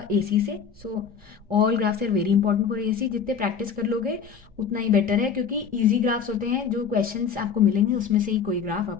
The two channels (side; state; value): right; quieter; 6.7 dB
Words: एसी से। So all graphs are very important for AC, जितने प्रैक्टिस कर लोगे उतना ही बेटर है, क्योंकि ईजी ग्राफ्स होते हैं जो क्वेश्चंस आपको मिलेंगे उसमें से ही कोई ग्राफ